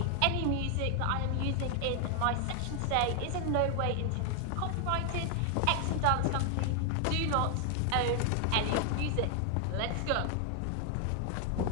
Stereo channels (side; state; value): both; different; correlation 0.00